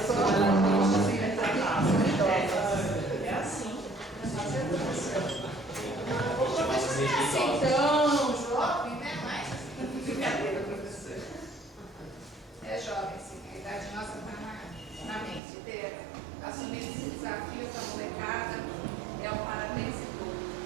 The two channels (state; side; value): drops out; left; at 15.4 s